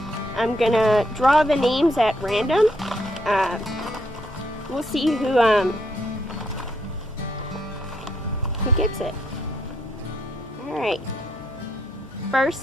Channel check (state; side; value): normal; both; correlation 0.74